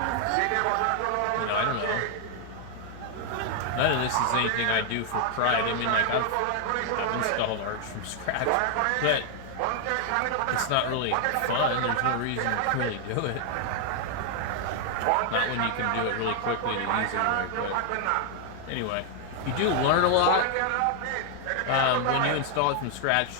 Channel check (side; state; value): both; different; correlation 0.00